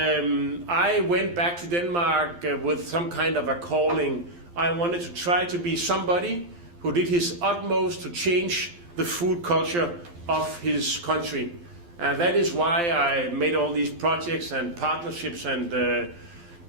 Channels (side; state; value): left; late; 12 ms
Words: went back to Denmark with some kind of a calling. I wanted to try to be somebody who did his utmost to change the food culture of his country. And that is why I made all these projects and partnerships and